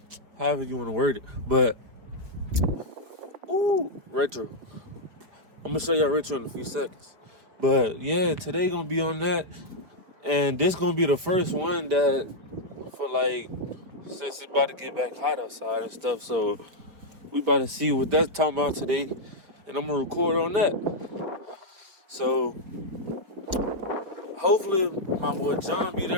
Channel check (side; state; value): left; late; 4.8 ms